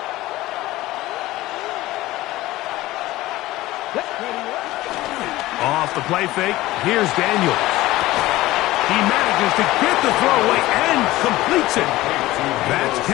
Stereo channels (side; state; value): right; quieter; 17.5 dB